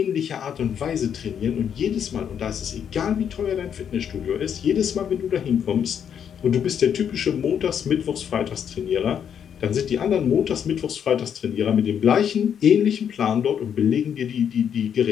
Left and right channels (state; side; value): quieter; right; 8.3 dB